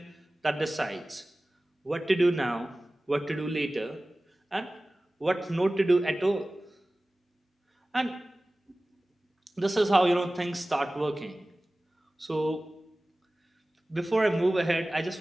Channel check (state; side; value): normal; both; correlation 0.97